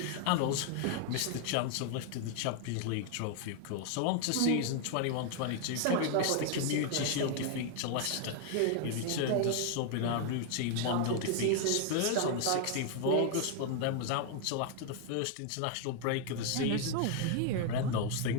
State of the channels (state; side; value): different; both; correlation 0.00